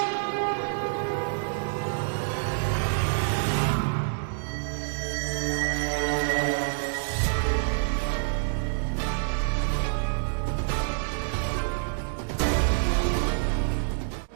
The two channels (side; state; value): left; silent; digital silence